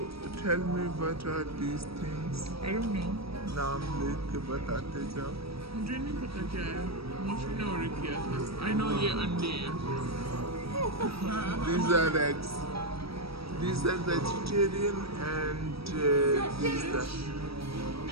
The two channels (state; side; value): late; left; 0.76 ms